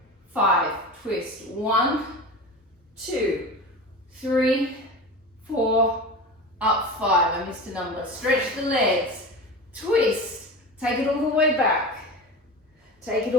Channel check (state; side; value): normal; both; correlation 0.29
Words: 5, twist, 1, 2, 3, 4, up 5, I missed a number. Stretch the legs, twist, take it all the way back. Take it